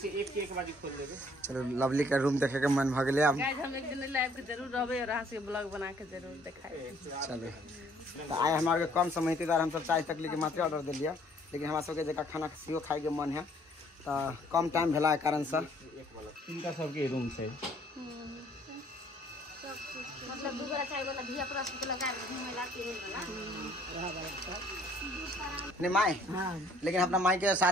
एक के एक बाजी खोल देबे चलो लवली का रूम देखे के मन भ गेले अब गाइस हम एक दिन लाइव के जरूर रहबे और अहाँ से ब्लॉग बना के जरूर दिखाई चलो तो आए हमारे कम समय द्वारा हम सब चाय तकली के मात्र ऑर्डर दिलिए लेकिन हमरा सबके जका खाना सीओ खाए के मन है तो कम टाइम भेला के कारण से इनका सबके रूम छै मतलब दुगरा चाय वाला धिया पुरा से लगा घूमेला वाला नहीं माई लेकिन अपना माई के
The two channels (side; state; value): both; normal; correlation 0.61